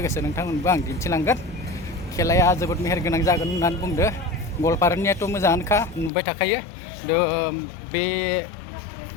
नोंथांमोनबो आं दिन्थिलांगोन खेलाया जोबोद मेहेरगोनां जागोन होननानै बुंदो गवालपारानियाथ' मोजाङानोखा नुबाय थाखायो बे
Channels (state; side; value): drops out; right; at 6.1 s